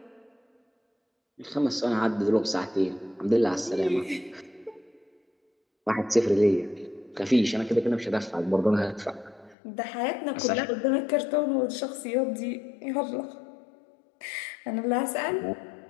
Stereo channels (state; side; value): drops out; right; at 9.6 s